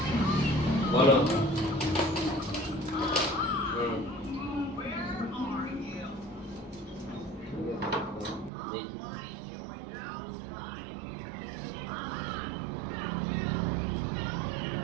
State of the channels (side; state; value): left; drops out; at 8.5 s